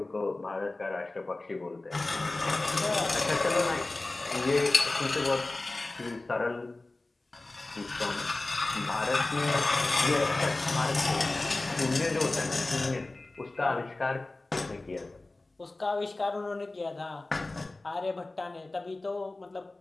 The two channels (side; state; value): right; quieter; 3.0 dB